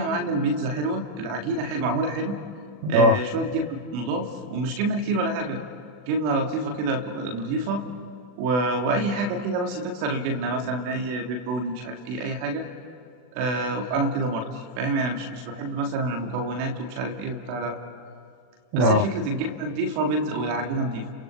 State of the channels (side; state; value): left; late; 40 ms